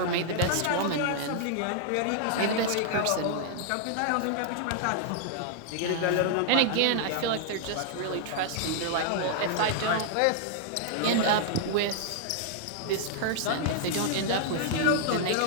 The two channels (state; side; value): different; both; correlation -0.01